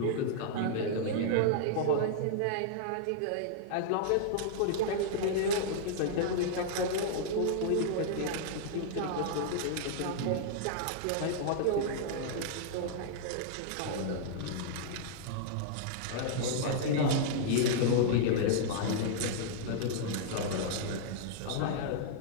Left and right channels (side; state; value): both; different; correlation -0.02